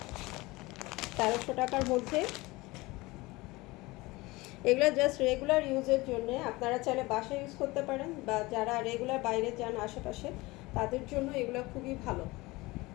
1300 টাকার মধ্যে। এগুলো জাস্ট রেগুলার ইউজের জন্য, আপনারা চাইলে বাসায় ইউজ করতে পারেন, বা যারা রেগুলার বাইরে যান আশেপাশে তাদের জন্য এগুলো খুবই ভালো।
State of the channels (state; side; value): quieter; right; 21.8 dB